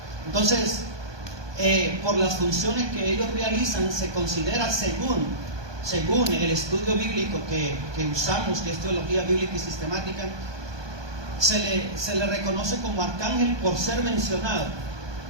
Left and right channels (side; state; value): left; late; 1.2 ms